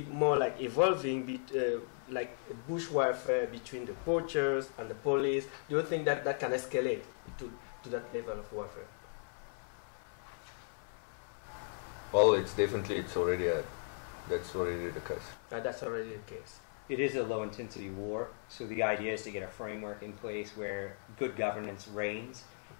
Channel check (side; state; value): right; silent; 53 dB below the other